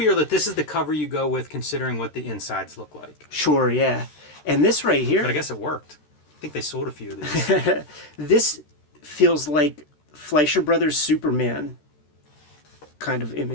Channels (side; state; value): right; late; 13 ms